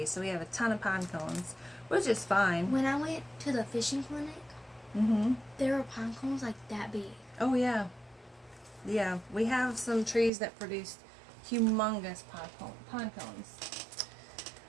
so we have a ton of pine cones, which is fine. When I went to the fishing clinic, there were pine cones like that big. Oh yeah. Yeah, we have some trees that produce humongous pine cones.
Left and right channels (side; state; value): left; drops out; at 10.3 s